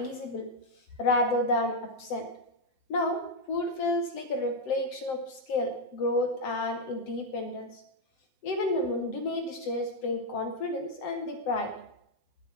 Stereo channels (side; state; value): right; late; 7.7 ms